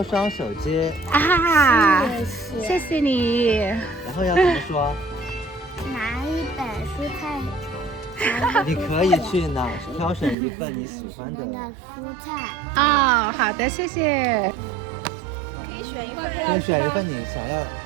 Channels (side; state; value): left; drops out; at 10.4 s